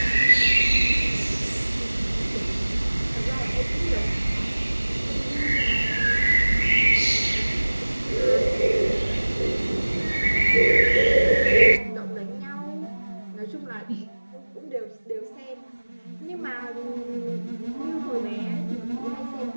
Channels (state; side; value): inverted; both; correlation -1.00